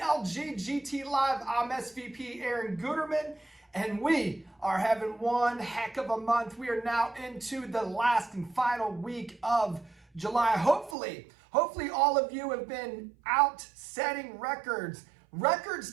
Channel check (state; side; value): drops out; left; at 11.0 s